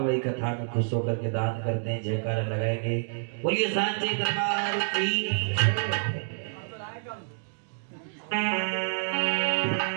कथा में खुश होकर के दान करते हैं। जयकारा लगाएंगे। बोलिए सांची दरबार की।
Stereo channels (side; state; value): left; silent; digital silence